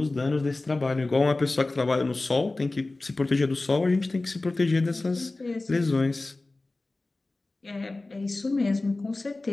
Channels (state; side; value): quieter; right; 3.1 dB